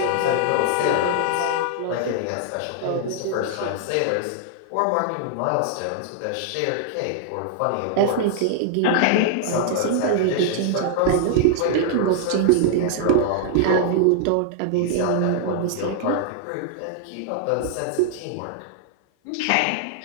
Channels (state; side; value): different; both; correlation -0.01